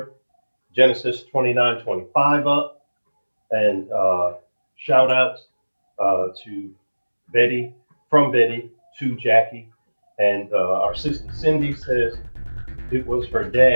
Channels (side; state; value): both; inverted; correlation -1.00